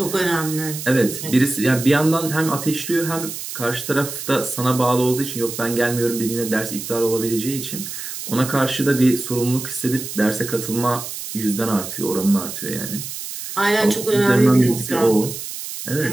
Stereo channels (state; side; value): noise; right; hiss, 8 dB below the sound